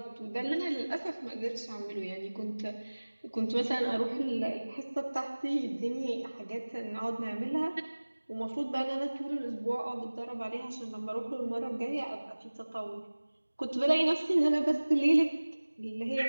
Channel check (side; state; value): both; inverted; correlation -1.00